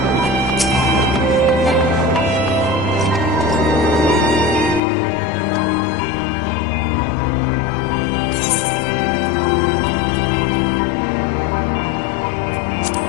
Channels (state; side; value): drops out; right; at 4.8 s